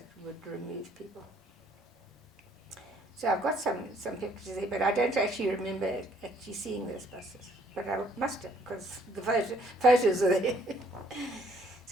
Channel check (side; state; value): both; normal; correlation 0.64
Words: would remove people. So I've got some pictures there, but I don't actually remember actually seeing those buses. But I must have, because the photos are there.